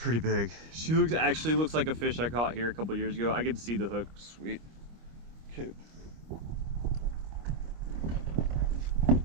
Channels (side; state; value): left; late; 25 ms